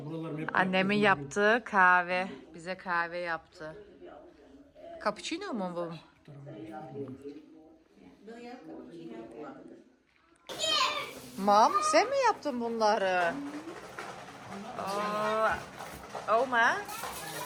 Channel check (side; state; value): both; identical; correlation 1.00